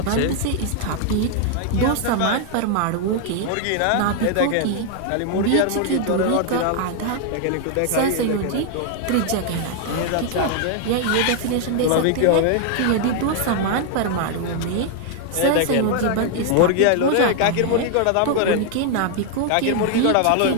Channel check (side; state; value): both; different; correlation 0.00